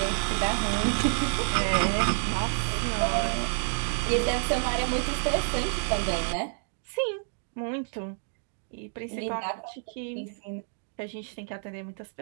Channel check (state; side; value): silent; left; 59 dB below the other